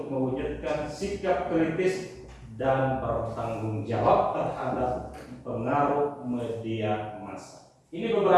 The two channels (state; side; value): identical; both; correlation 1.00